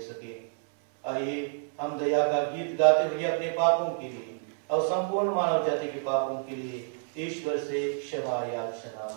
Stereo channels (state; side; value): silent; left; 59 dB below the other